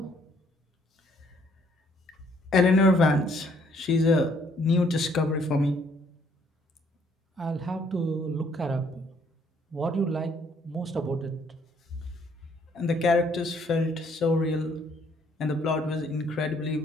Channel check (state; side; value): normal; both; correlation 0.65